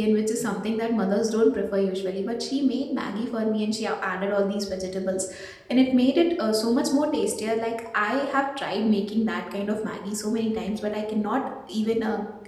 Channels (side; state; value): both; identical; correlation 1.00